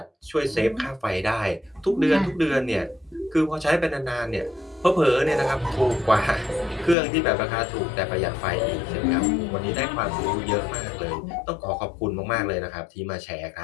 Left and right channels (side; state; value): right; drops out; at 7.0 s